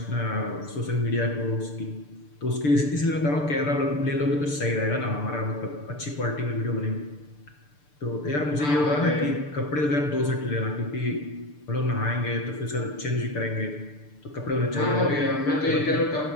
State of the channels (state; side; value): late; right; 6.8 ms